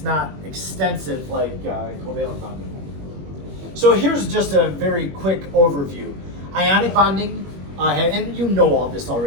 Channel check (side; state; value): left; late; 21 ms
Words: not extensive like covalent bonding. So here's just a very quick overview. Ionic bonding, and you know all this